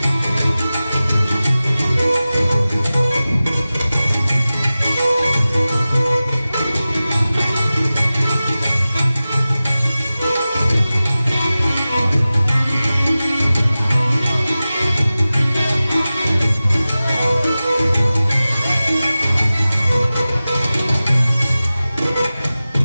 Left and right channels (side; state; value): both; inverted; correlation -0.96